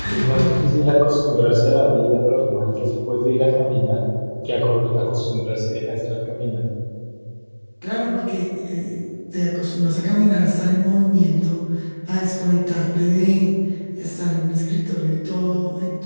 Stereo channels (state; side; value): inverted; both; correlation -1.00